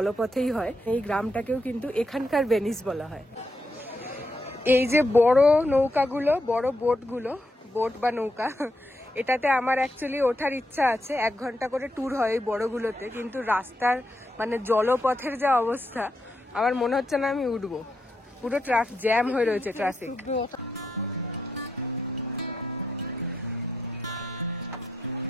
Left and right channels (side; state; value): both; normal; correlation 0.82